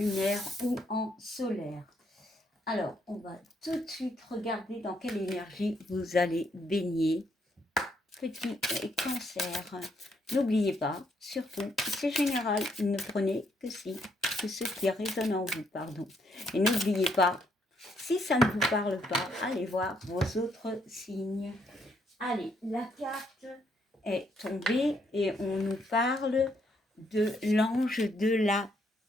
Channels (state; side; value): normal; both; correlation 0.72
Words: ou en solaire. Alors, on va tout de suite regarder dans quelle énergie vous allez baigner. Petit cancer. N'oubliez pas, surtout, c'est général, ne prenez que ce qui résonne en vous, pardon. Et n'oubliez pas, si ça ne vous parle pas, allez voir vos autres signes. Allez, la carte est tombée et on nous parle de l'ange de la